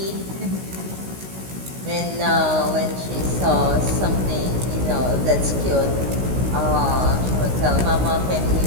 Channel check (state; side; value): late; left; 16 ms